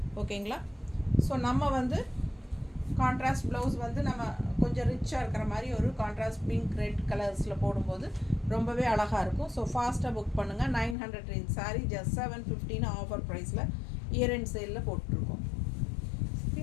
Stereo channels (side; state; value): right; drops out; at 11.0 s